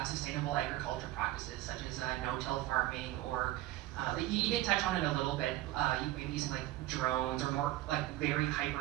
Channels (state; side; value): quieter; left; 16.1 dB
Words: sustainable agriculture practices, such as no-till farming, or you did touch on it a little bit, maybe using drones or more very